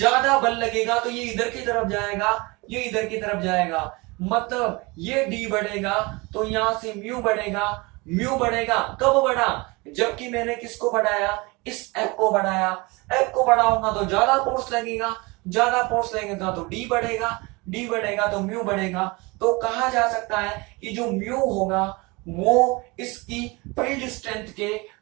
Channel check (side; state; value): left; quieter; 25.5 dB